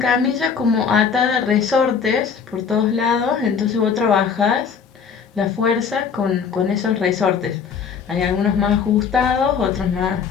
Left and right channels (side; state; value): right; quieter; 6.5 dB